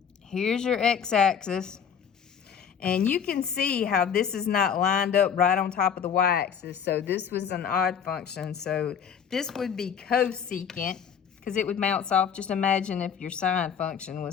here's your x-axis. And you can see how this is not lined up right on top of the y-axis. So this was an odd function. So this would be cosecant, because it would bounce off. Just imagine if your sine function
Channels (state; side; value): quieter; right; 7.6 dB